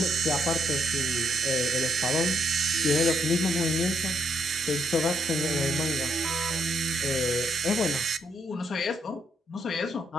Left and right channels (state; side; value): normal; both; correlation 0.75